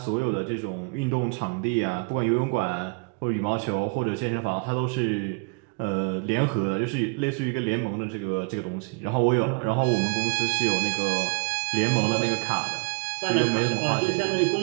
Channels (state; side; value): quieter; left; 32.3 dB